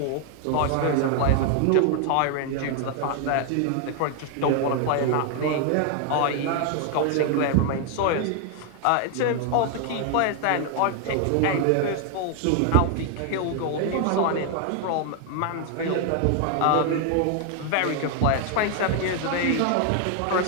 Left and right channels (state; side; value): different; both; correlation 0.00